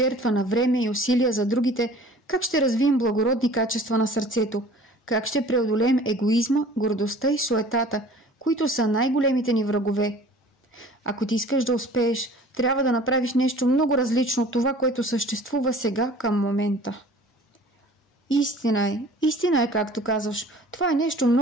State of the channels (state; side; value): normal; both; correlation 0.47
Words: на време и усилия за другите, как ще развием благородни качества на сърцето? Как ще преодолеем егоизма, гордостта и суетата, които са най-големите ни врагове? Ако ти искаш да успееш, трябва да направиш нещо много различно от това, което съществува сега към момента. Истина е, както казваш. Това е нещо